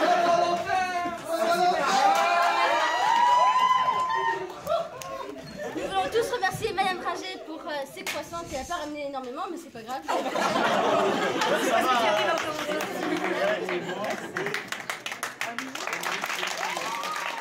Nous voulons tous remercier Madame Rager pour ses croissants qui n'a pas ramené énormément, mais c'est pas grave. Ça va.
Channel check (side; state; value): both; identical; correlation 1.00